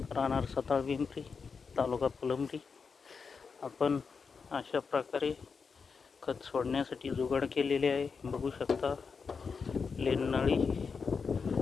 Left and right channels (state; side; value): quieter; right; 5.4 dB